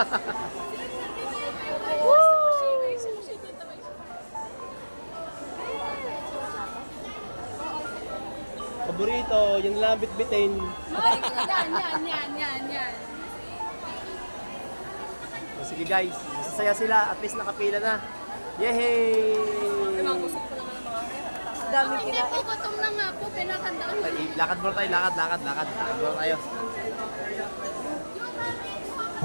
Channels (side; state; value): both; inverted; correlation -1.00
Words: Paborito, yung lang bitbitin. Yan. O, sige guys, masasaya sila. At least nakapila na. Yehey! Dami kina. Hindi po, gutom na nga po. Pinakandaan ko. Ay, lakad muna tayo, lakad. Lakad muna tayo.